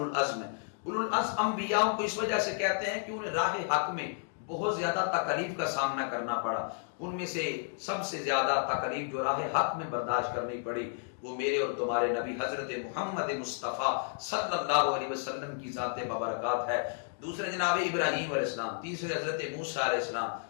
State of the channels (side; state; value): right; silent; digital silence